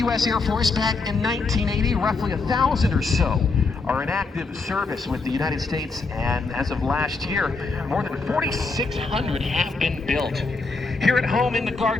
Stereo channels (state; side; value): quieter; right; 3.9 dB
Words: Air Force back in 1980. Roughly 1,000 or so are in active service with the United States, and as of last year, more than 4,600 have been built. Here at home in the